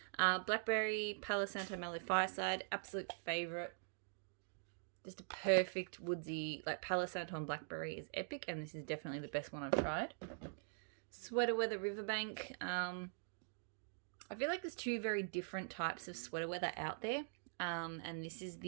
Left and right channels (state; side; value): silent; left; digital silence